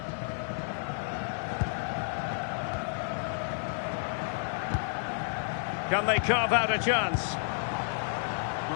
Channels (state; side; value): silent; right; digital silence